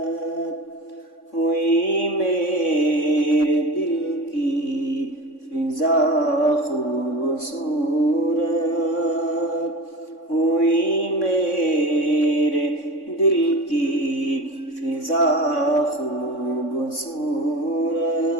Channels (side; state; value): right; late; 3.6 ms